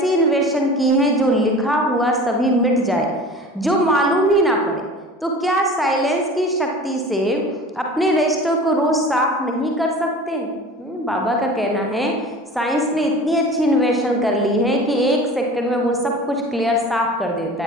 इन्वेशन की है जो लिखा हुआ सभी मिट जाए, जो मालूम ही ना पड़े। तो क्या साइलेंस की शक्ति से अपने रजिस्टर को रोज साफ नहीं कर सकते? बाबा का कहना है साइंस ने इतनी अच्छी इन्वेशन कर ली है कि 1 सेकंड में वो सब कुछ क्लियर साफ कर देता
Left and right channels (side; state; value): both; normal; correlation 0.39